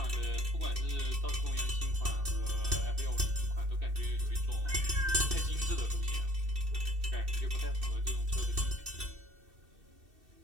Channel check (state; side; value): late; left; 2.6 ms